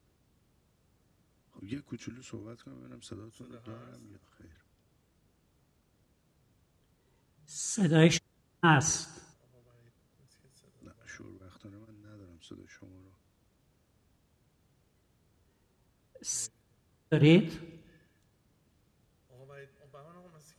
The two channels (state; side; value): identical; both; correlation 1.00